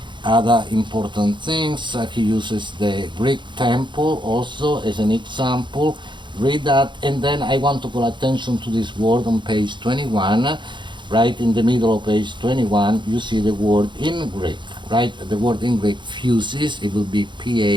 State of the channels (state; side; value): late; left; 0.23 ms